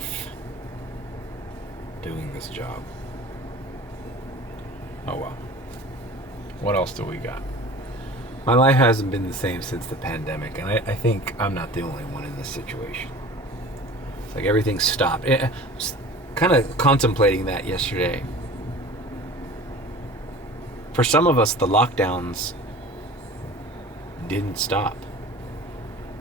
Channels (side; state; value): both; normal; correlation 0.41